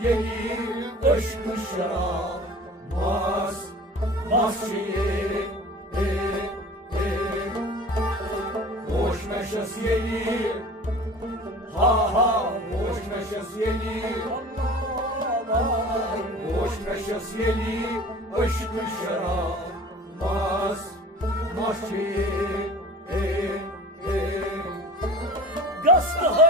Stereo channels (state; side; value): normal; both; correlation 0.41